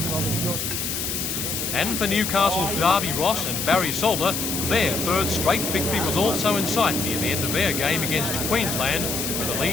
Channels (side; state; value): left; noise; hiss, 2 dB below the sound